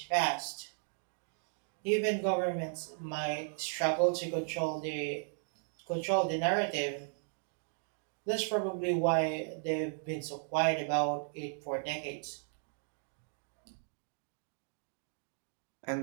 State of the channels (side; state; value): left; silent; digital silence